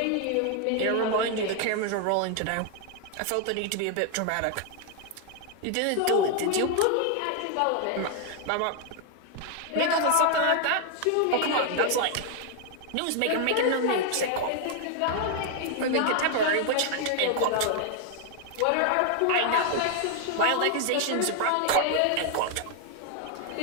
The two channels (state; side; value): different; both; correlation 0.00